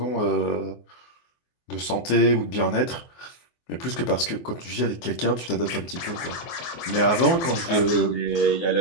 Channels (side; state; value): right; late; 24 ms